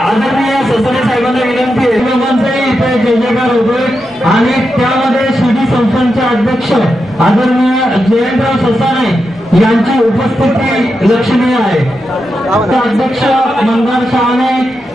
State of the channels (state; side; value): normal; both; correlation 0.87